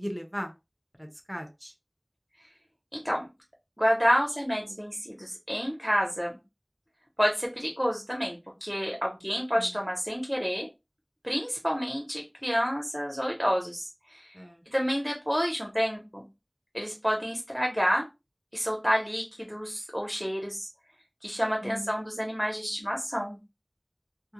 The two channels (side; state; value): both; identical; correlation 1.00